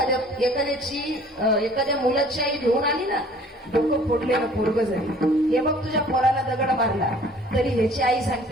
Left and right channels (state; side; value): normal; both; correlation 0.52